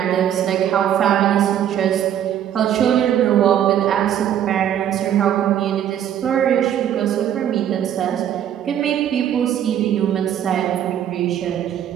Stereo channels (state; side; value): quieter; left; 10.3 dB